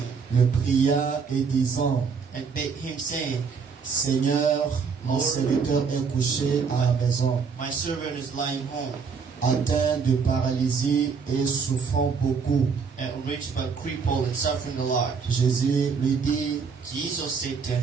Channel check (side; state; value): left; quieter; 5.6 dB